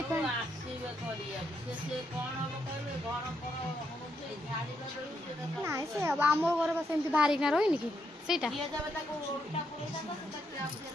पानी आसीबे करिया से कोन हो कहले घर पर होते झाड़ी कर नै से अब हमर घर बस एमती भारी ना रोइनी कि सेटा ये जब तक उल्टा पुरे जाता तो ट्रैप से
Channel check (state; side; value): normal; both; correlation 0.79